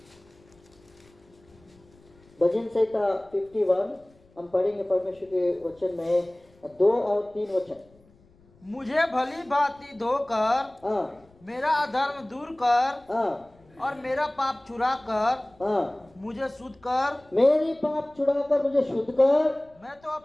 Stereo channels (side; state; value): left; noise; rumble, 30 dB below the sound